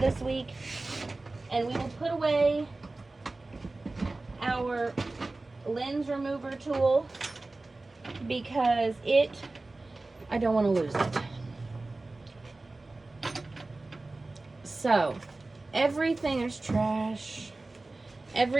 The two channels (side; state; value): left; quieter; 3.2 dB